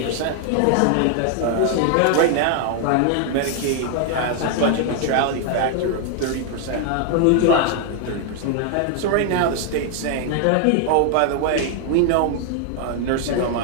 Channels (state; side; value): different; both; correlation 0.00